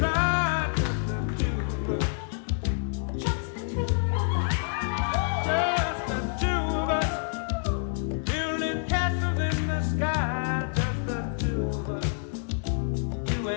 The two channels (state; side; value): silent; right; digital silence